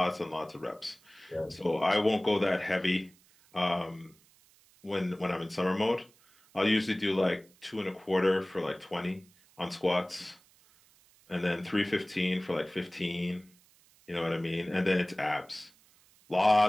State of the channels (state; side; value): noise; right; hiss, 30 dB below the sound